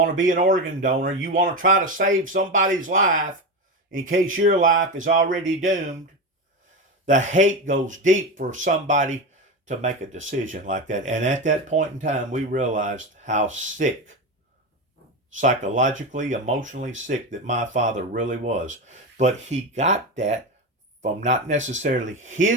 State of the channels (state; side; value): normal; both; correlation 0.19